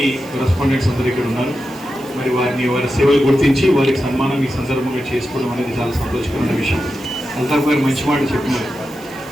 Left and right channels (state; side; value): noise; right; hiss, 23 dB below the sound